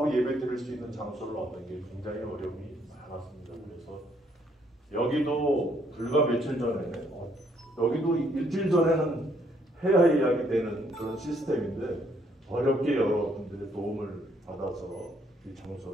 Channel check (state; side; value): normal; both; correlation 0.69